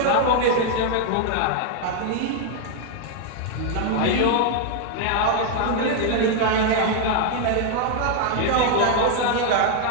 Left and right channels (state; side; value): different; both; correlation 0.00